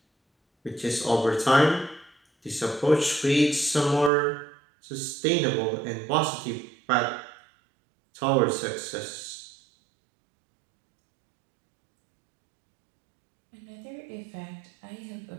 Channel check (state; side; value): drops out; left; at 4.1 s